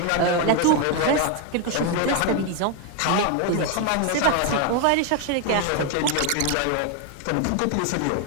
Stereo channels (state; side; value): different; both; correlation 0.01